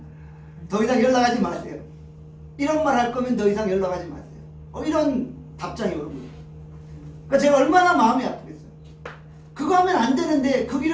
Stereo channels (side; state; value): both; identical; correlation 1.00